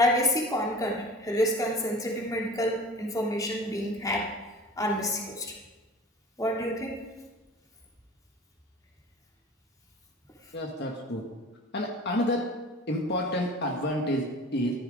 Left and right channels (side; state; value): both; normal; correlation 0.40